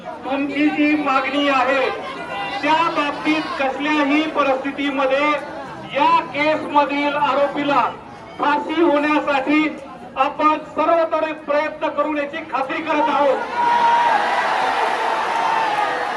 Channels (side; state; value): both; identical; correlation 1.00